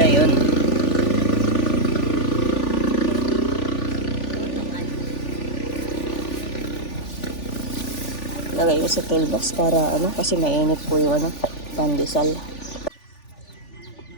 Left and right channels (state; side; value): late; right; 3.4 ms